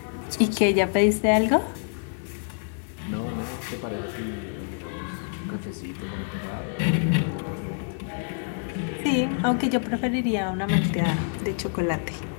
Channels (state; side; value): silent; right; 56 dB below the other